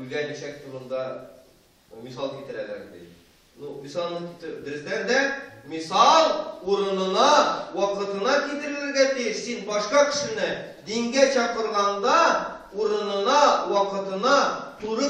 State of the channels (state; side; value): identical; both; correlation 1.00